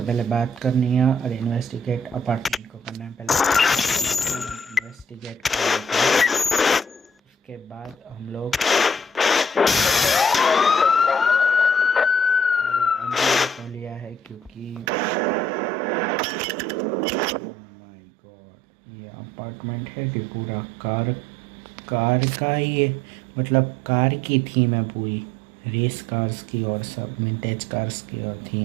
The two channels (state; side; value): drops out; left; at 14.9 s